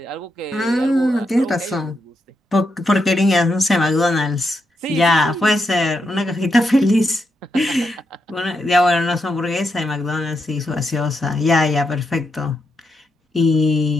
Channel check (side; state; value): both; normal; correlation 0.83